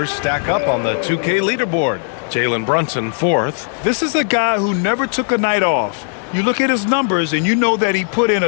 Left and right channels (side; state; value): right; silent; 66 dB below the other